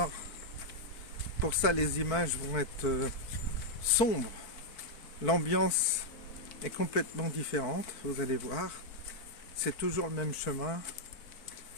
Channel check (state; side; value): late; right; 4.5 ms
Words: Pour ça les images vont être sombres, l'ambiance est complètement différente, vous allez voir. C'est toujours le même chemin,